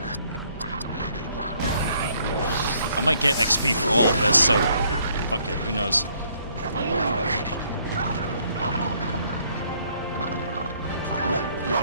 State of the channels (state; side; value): inverted; both; correlation -0.66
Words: I might get XP for all of this, so... fuck it, who knows.